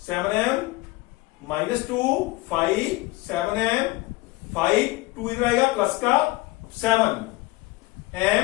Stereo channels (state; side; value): quieter; right; 21.3 dB